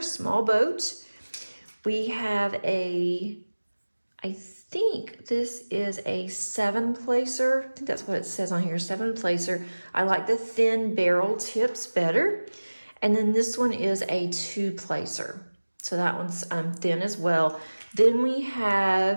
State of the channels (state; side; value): inverted; both; correlation -1.00